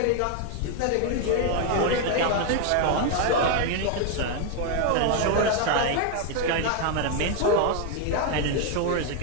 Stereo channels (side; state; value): both; different; correlation 0.01